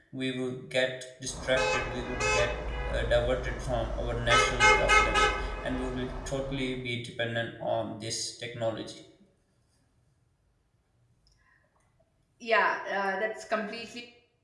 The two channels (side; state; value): both; identical; correlation 1.00